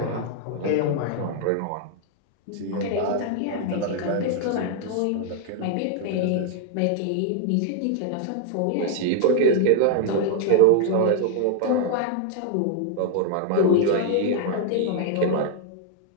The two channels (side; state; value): both; different; correlation 0.00